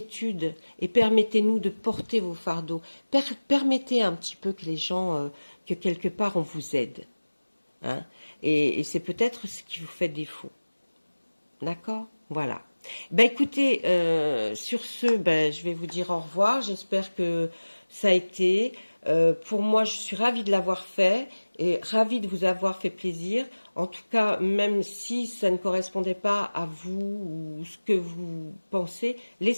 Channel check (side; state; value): both; inverted; correlation -1.00